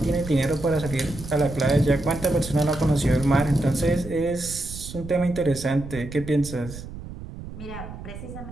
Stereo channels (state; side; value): noise; right; rumble, 12 dB below the sound